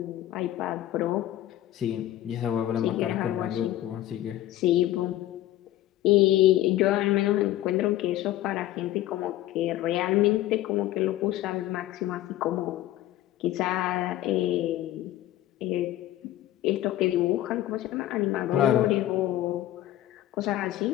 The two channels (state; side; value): quieter; right; 14.1 dB